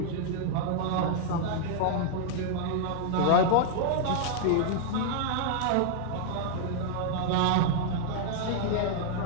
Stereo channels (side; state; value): both; different; correlation -0.01